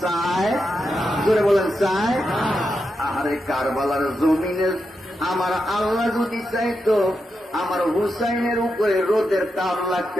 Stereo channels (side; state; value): both; normal; correlation 0.86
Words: চায়, জোরে বলেন চায়। আহারে কারবালার জমিনে আমার আল্লাহ যদি চাইতো আমার হুসাইনের উপরে রোদের তাপ